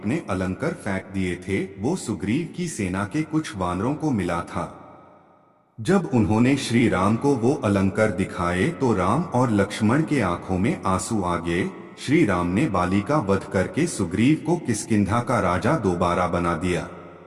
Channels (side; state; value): both; identical; correlation 1.00